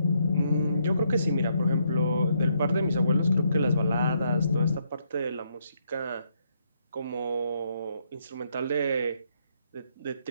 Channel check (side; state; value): both; inverted; correlation -0.74